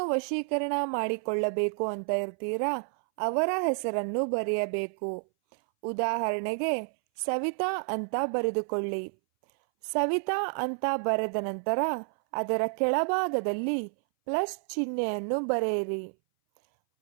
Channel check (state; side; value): silent; left; 58 dB below the other